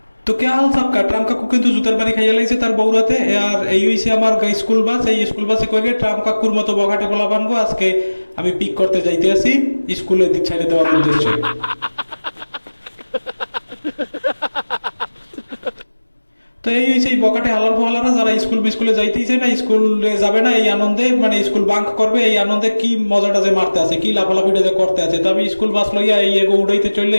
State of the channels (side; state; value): both; inverted; correlation -1.00